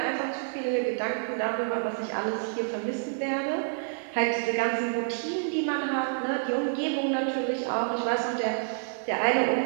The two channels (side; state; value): left; silent; digital silence